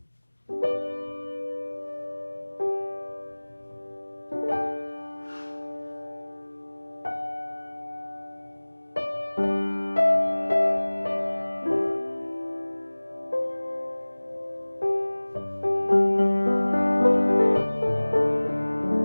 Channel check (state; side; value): inverted; both; correlation -1.00